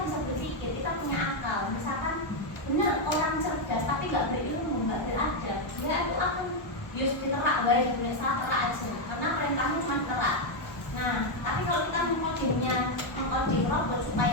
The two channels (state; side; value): late; right; 1.1 ms